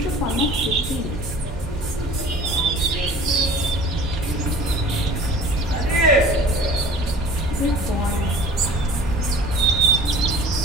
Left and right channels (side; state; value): both; normal; correlation 0.44